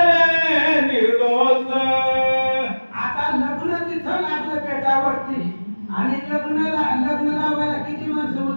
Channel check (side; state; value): both; inverted; correlation -1.00